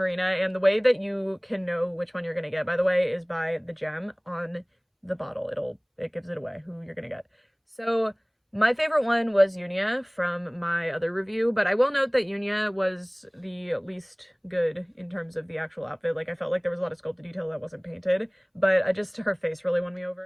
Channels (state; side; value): identical; both; correlation 1.00